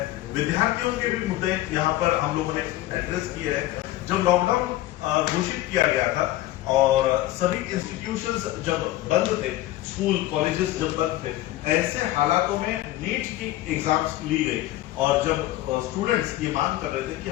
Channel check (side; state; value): right; quieter; 15.8 dB